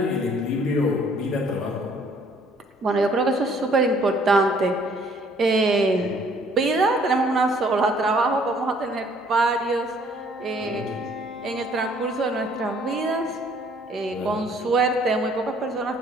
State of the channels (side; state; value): both; normal; correlation 0.60